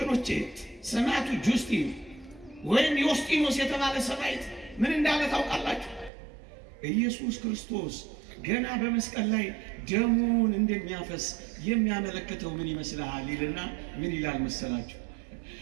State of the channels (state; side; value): drops out; left; at 6.1 s